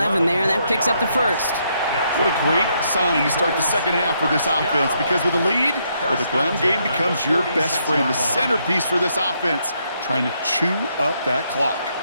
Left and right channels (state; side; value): inverted; both; correlation -0.75